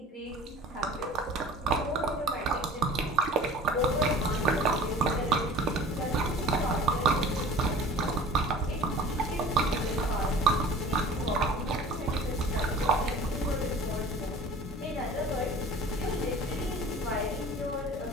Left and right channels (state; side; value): normal; both; correlation 0.43